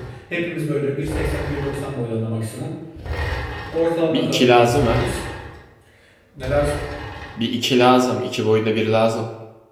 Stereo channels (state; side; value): identical; both; correlation 1.00